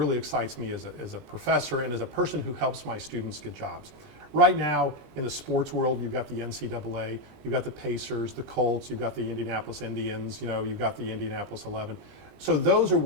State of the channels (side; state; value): left; late; 20 ms